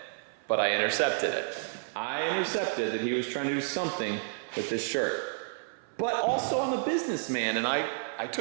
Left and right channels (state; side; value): silent; left; 57 dB below the other